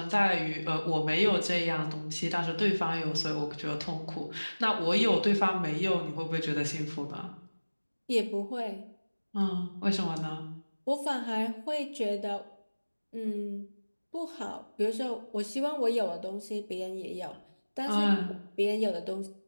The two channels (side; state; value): both; inverted; correlation -1.00